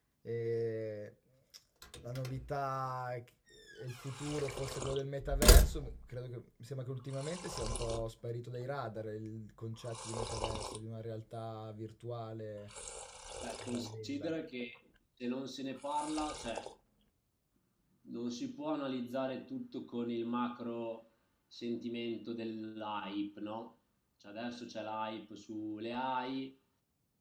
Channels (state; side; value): identical; both; correlation 1.00